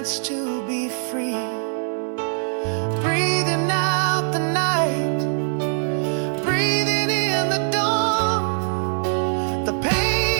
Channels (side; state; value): left; silent; digital silence